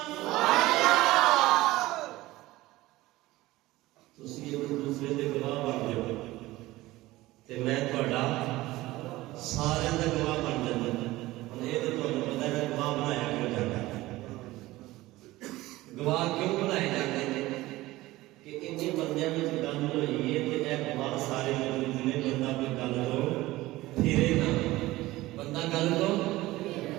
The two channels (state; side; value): quieter; left; 18.1 dB